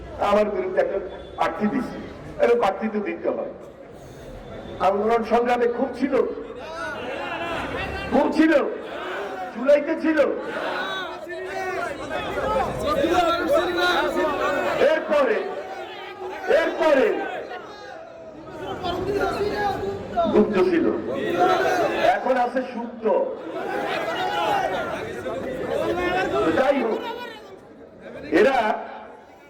আমার বিরুদ্ধে একটা প্রার্থী দিচ্ছি, এবং প্রার্থী তো দিতে হয়। আন্দোলন সংগ্রামে খুব ছিল, খুব ছিল, জুলাইতে ছিল। এরপরে এরপরে গুপ্ত ছিল, এখন আছে সুপ্ত। যাই হোক, এরা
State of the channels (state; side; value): identical; both; correlation 1.00